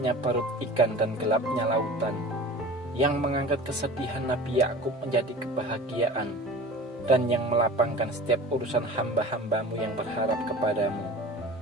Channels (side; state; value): both; normal; correlation 0.39